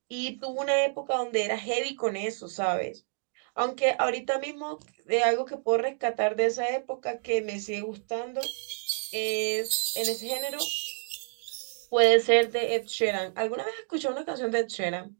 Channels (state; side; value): silent; left; digital silence